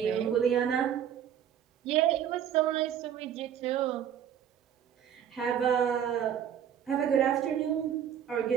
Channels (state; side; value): quieter; left; 9.4 dB